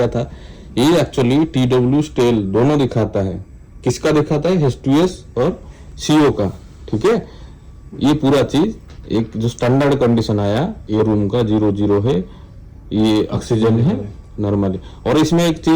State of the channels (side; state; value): both; identical; correlation 1.00